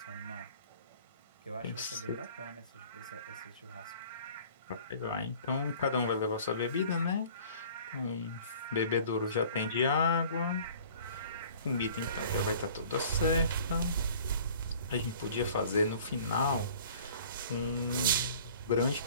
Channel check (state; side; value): inverted; both; correlation -0.49